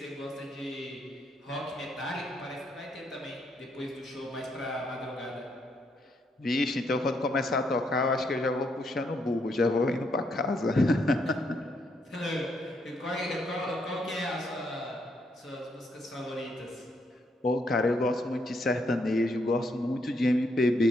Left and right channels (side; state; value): both; normal; correlation 0.75